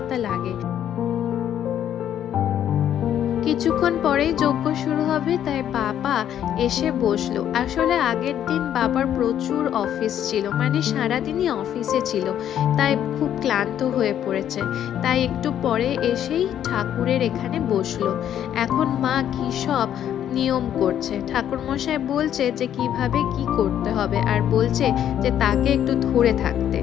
লাগে। কিছুক্ষণ পরেই যজ্ঞ শুরু হবে, তাই বাবা এসে বসলো। আসলে আগের দিন বাবার প্রচুর অফিস ছিল, মানে সারাদিনই অফিসে ছিল, তাই খুব ক্লান্ত হয়ে পড়েছে, তাই একটু পরে এসেই ঠাকুরের এখানে বসলো। এখন মা কি সব নিয়ম করছে, ঠাকুরমশাই বলছে যে কিভাবে কি করতে হবে, আর বলছে যে তাকে একটু ধরে থাকতে।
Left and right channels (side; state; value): right; quieter; 10.3 dB